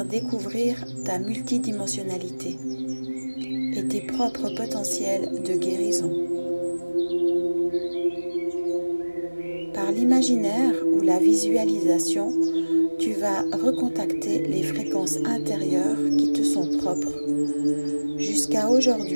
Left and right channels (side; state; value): both; inverted; correlation -1.00